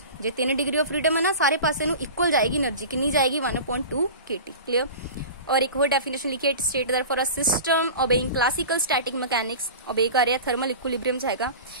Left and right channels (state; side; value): inverted; both; correlation -0.34